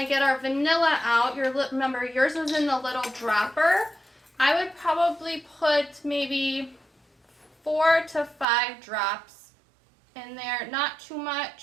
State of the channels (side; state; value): left; drops out; at 8.5 s